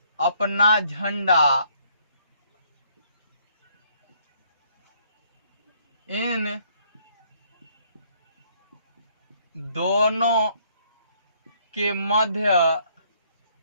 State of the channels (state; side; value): inverted; both; correlation -0.66